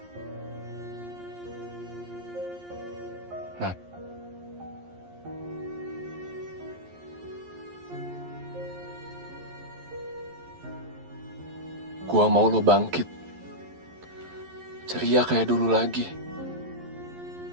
Nat, gue mau lo bangkit, ceria kayak dulu lagi.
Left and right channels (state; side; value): late; left; 11 ms